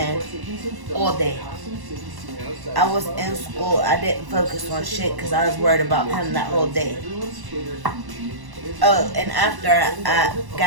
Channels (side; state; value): left; late; 1.1 ms